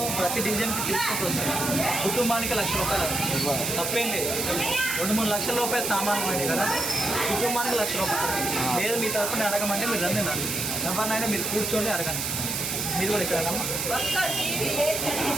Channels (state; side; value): noise; right; hiss, 2 dB below the sound